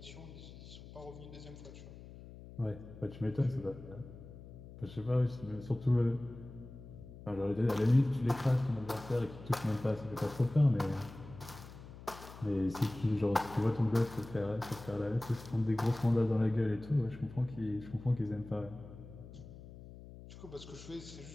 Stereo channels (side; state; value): left; noise; hum, 16 dB below the sound